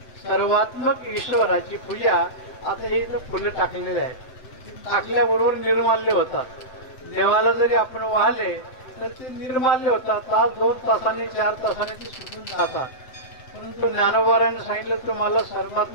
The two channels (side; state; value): right; late; 7.7 ms